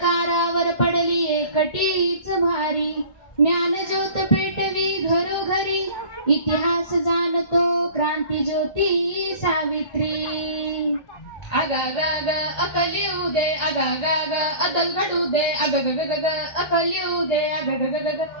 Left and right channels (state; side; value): late; right; 1.7 ms